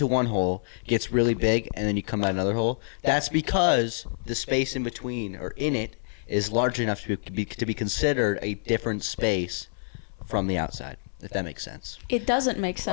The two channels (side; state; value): right; silent; 60 dB below the other